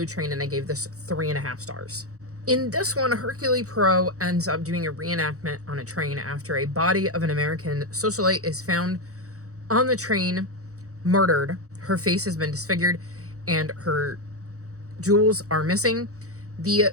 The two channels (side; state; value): left; late; 0.65 ms